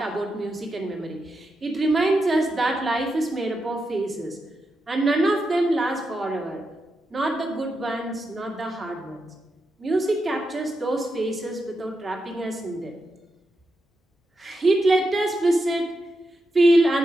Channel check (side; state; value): both; normal; correlation 0.87